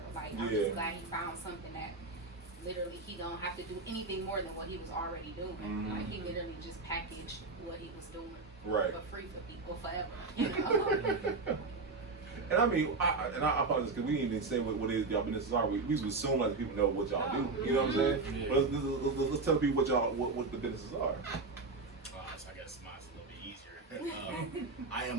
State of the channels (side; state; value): left; quieter; 3.8 dB